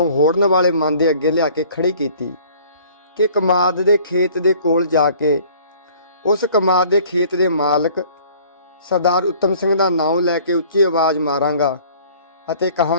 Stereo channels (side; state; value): both; inverted; correlation -0.52